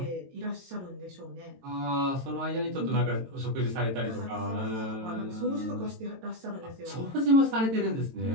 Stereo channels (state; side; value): late; left; 22 ms